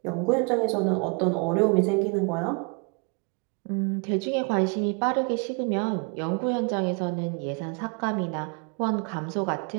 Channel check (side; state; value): left; quieter; 34.0 dB